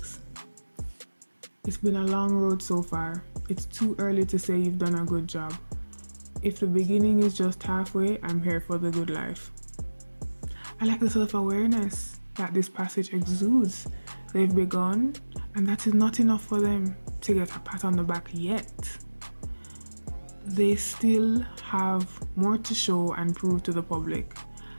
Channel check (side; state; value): both; inverted; correlation -1.00